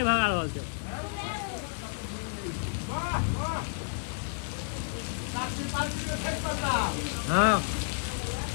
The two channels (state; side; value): silent; right; 57 dB below the other